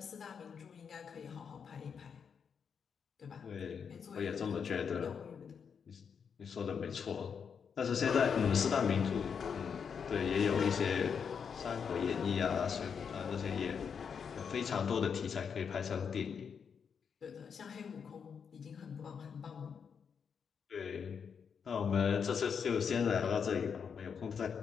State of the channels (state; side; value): quieter; right; 6.7 dB